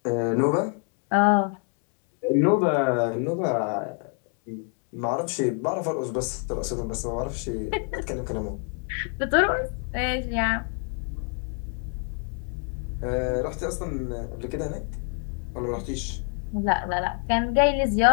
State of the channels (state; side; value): quieter; right; 39.6 dB